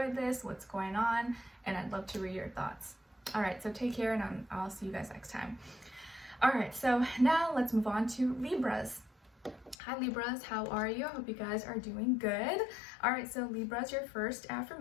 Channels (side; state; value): right; drops out; at 9.8 s